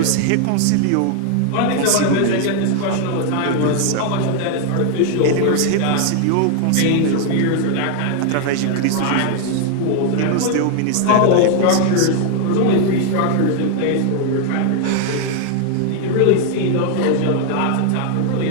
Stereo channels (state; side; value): different; both; correlation 0.00